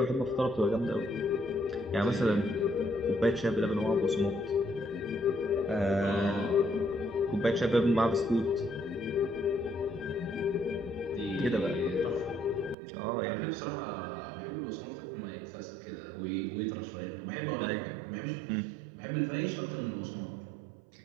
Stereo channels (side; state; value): left; drops out; at 12.8 s